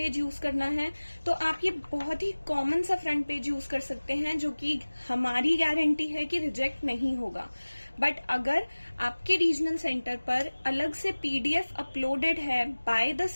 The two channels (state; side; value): inverted; both; correlation -1.00